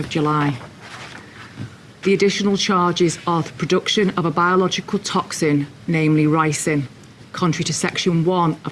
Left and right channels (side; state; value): both; identical; correlation 1.00